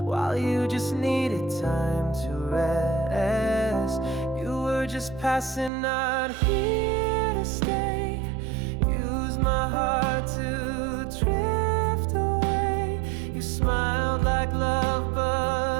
while you just needed time to rest. You were just passing, not here to stay. Use my heart to drift away. You smiled like love,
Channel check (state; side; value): drops out; left; at 5.7 s